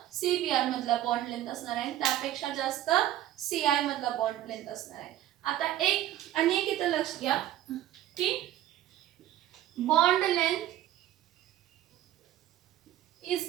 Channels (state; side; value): quieter; left; 13.0 dB